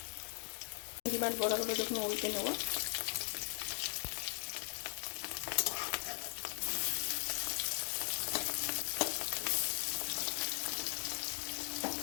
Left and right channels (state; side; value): silent; right; 52 dB below the other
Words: ডিমের বড়াগুলো দেখুন উল্টে নেব।